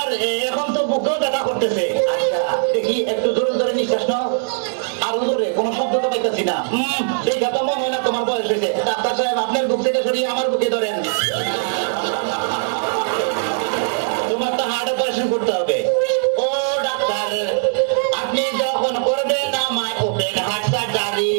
এখন তো বুকেও ব্যথা করতেছে আচ্ছা দেখি একটু জোরে জোরে নিঃশ্বাস নাও আরো জোরে কোনো শব্দ তো পাইতেছি না দেখা তো মনে হয় না তোমার বয়স হয়েছে ডাক্তার সাহেব আপনার বুক থেকে সরিয়ে আমার বুকে ধরেন তোমার তো হার্ট অপারেশন করতে হবে ও ডাক্তার আপনি যখন করবেন আমায় ওপেন হার্ট সার্জারি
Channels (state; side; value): silent; left; 66 dB below the other